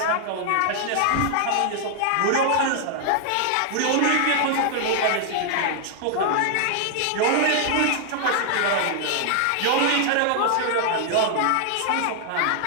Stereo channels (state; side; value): different; both; correlation 0.00